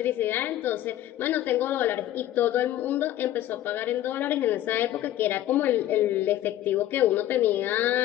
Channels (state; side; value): quieter; right; 13.2 dB